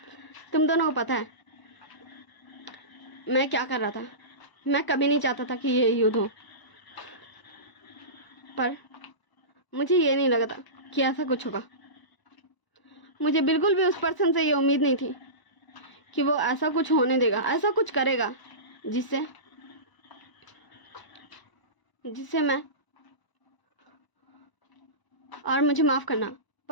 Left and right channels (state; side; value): late; right; 1.0 ms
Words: तुम दोनों को पता है मैं क्या कर रहा था? मैं कभी नहीं चाहता था कि ये युद्ध हो, पर मुझे ये नहीं लगा था कि ऐसा कुछ होगा। मुझे बिल्कुल भी उस पर्सन से ये उम्मीद नहीं थी कि वो ऐसा कुछ होने देगा, ऐसा कुछ करेगा जिससे मैं, और मुझे माफ़ करना